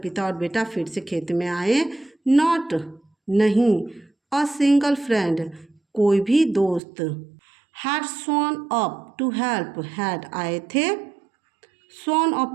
पिता और बेटा फिर से खेत में आए। नॉट, नहीं। अ सिंगल फ्रेंड, कोई भी दोस्त। Had shown up to help, had आए थे। शोन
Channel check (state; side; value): drops out; left; at 6.8 s